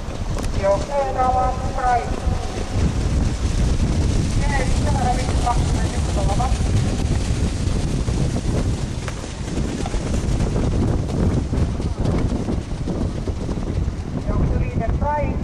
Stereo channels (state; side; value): identical; both; correlation 1.00